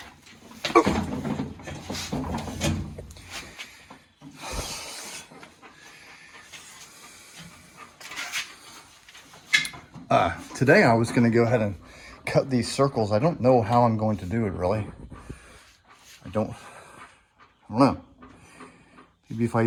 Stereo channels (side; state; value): both; identical; correlation 1.00